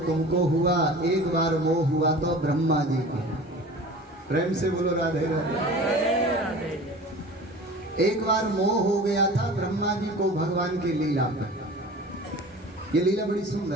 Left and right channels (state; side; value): normal; both; correlation 0.39